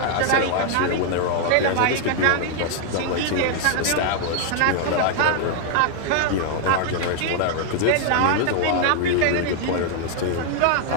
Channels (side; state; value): both; different; correlation 0.00